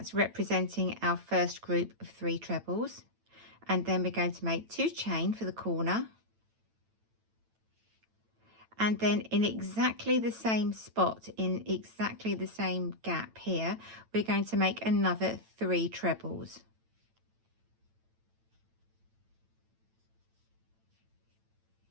representing our first group of 3 trebles. And then we're going to make 2 chain for the corner. And then in exactly the same spot, in exactly the same gap here, we're going to make another 3 trebles.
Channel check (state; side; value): late; left; 9.0 ms